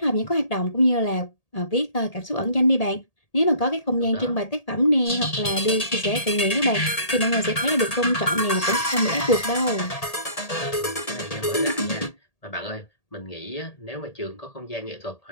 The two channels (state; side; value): late; right; 1.8 ms